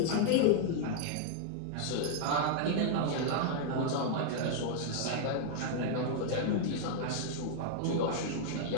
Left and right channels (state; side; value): different; both; correlation -0.01